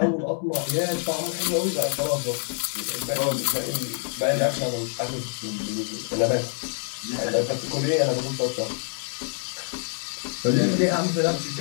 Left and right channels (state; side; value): silent; right; 57 dB below the other